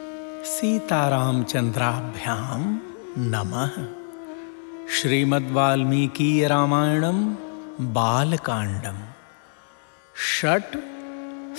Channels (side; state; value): right; silent; digital silence